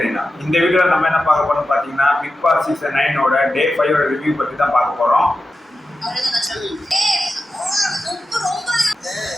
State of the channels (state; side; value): normal; both; correlation 0.91